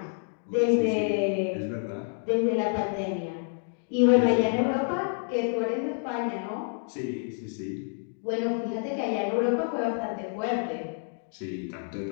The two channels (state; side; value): silent; right; 59 dB below the other